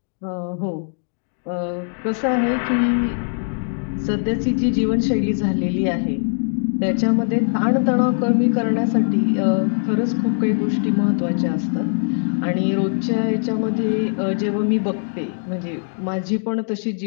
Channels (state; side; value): silent; right; 64 dB below the other